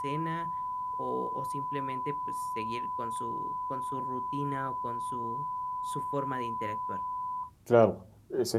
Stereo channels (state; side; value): identical; both; correlation 1.00